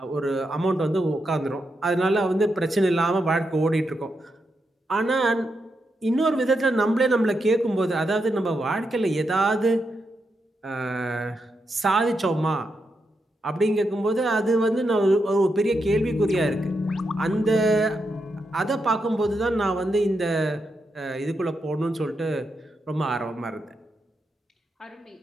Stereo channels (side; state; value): both; normal; correlation 0.84